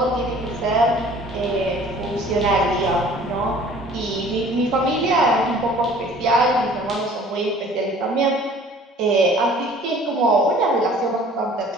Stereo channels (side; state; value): both; normal; correlation 0.50